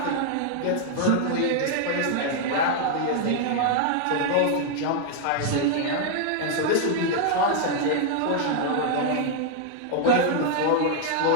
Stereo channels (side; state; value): both; different; correlation 0.00